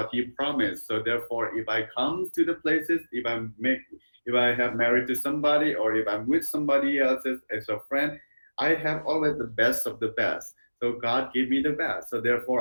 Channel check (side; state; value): both; inverted; correlation -1.00